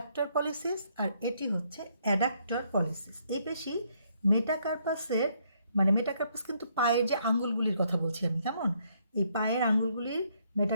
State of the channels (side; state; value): both; inverted; correlation -0.71